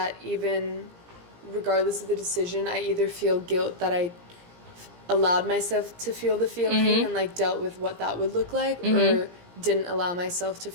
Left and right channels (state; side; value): late; left; 17 ms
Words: even regardless of the decision, I either feel guilt that I allowed myself to feel the feeling and like dealt with what that would look like, or didn't allow myself to